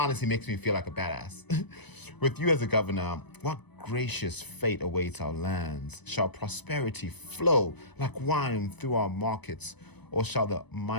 makes me feel like a badass. With you as a governor, what gracious fate awaits our lands? Shall prosperity flow like wine through our markets, or shall the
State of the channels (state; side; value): late; right; 0.99 ms